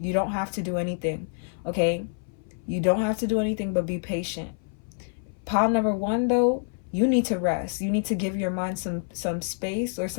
You don't have to do anything, okay? You don't have to do anything but be patient. Pile number 1, though, you need to rest. You need to give your mind some space or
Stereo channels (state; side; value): silent; right; 58 dB below the other